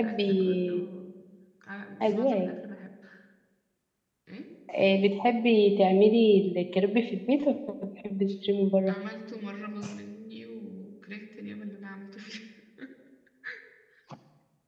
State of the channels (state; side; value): identical; both; correlation 1.00